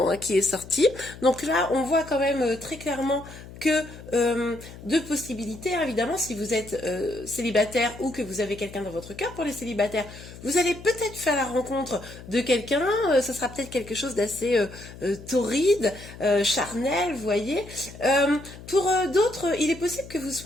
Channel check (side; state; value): left; noise; hum, 16 dB below the sound